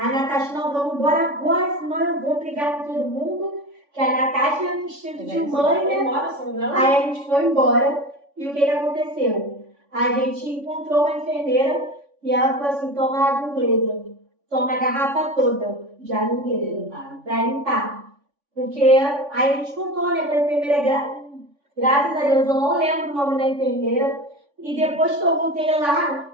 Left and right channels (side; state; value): left; late; 3.5 ms